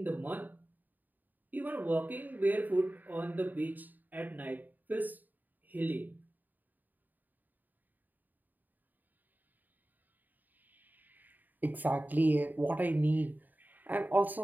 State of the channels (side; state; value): left; late; 0.087 ms